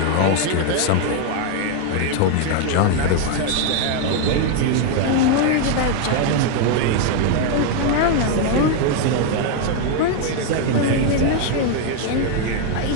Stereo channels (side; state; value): both; different; correlation 0.01